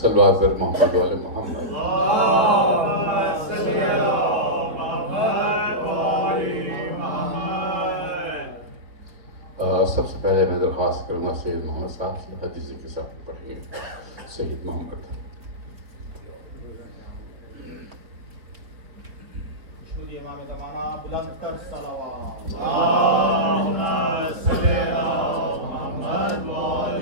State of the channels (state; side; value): late; left; 4.3 ms